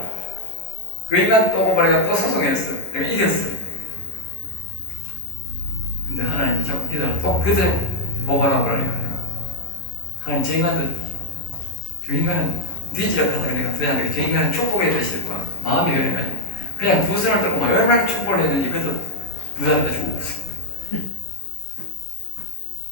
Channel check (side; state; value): right; late; 11 ms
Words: 그 인간 또 고발해가 또 소송했어. 내가 이겼어. 근데 하나님이 자꾸 기다려 또 그대로 고발하고 그러니까 하나님 저 인간도 저 인간은 뒤지락하다가 내가 그냥 저 인간은 축복해야 되실 거야. 마음이 변해가지고 그냥 두 손을 들고 막 얼마나 축복을 했는지 그것도 두 사람 다 죽었어.